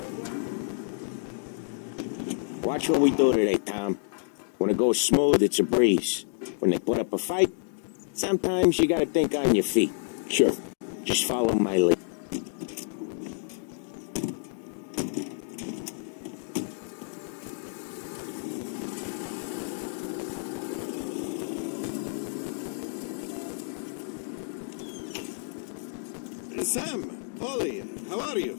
Watch what we do today, Tom. When it goes smooth, it's a breeze. When they put up a fight, sometimes you gotta think on your feet. Sure. Just follow my lead. Sam, Polly, how are you?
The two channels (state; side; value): silent; right; digital silence